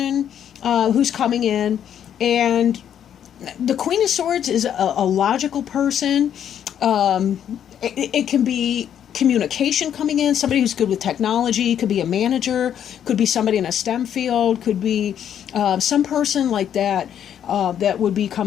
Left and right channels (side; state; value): right; quieter; 9.5 dB